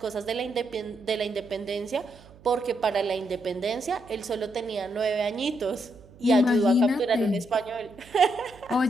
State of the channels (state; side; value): noise; right; hum, 23 dB below the sound